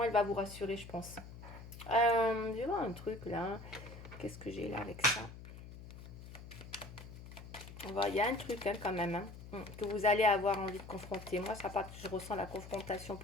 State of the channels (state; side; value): noise; left; hum, 14 dB below the sound